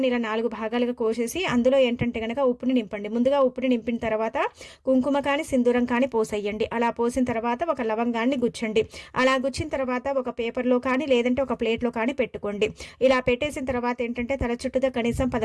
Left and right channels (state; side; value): identical; both; correlation 1.00